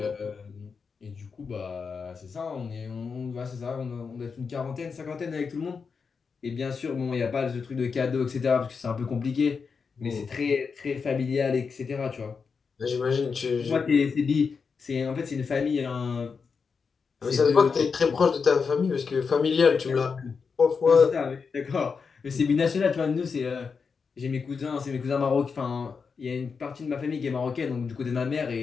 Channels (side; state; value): right; quieter; 5.5 dB